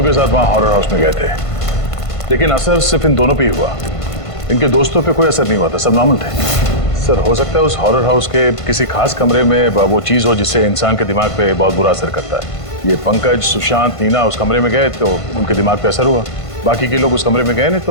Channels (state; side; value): late; right; 1.5 ms